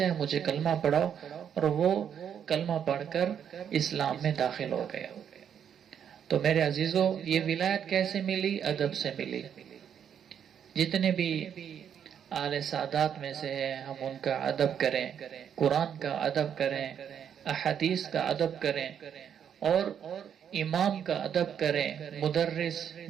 ہے، مجھے کلمہ پڑھاؤ۔ اور وہ کلمہ پڑھ کر اسلام میں داخل ہو گیا۔ تو میرے عزیزو، یہ ولایت کیسے ملی؟ ادب سے ملی۔ جتنے بھی اعلی سادات میں سے ہیں، ہم ان کا ادب کریں، قرآن کا ادب کریں، احادیث کا ادب کریں، اور امام کا ادب کریں، مدرس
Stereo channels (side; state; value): left; quieter; 8.5 dB